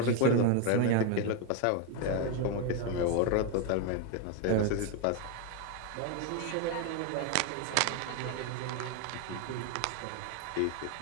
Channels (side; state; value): both; different; correlation 0.01